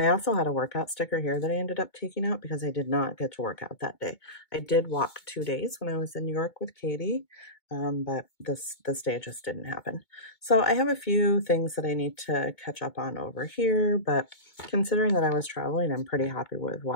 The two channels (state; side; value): late; right; 2.2 ms